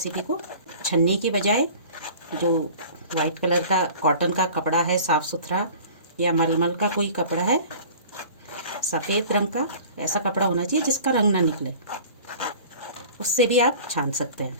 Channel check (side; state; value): both; inverted; correlation -0.43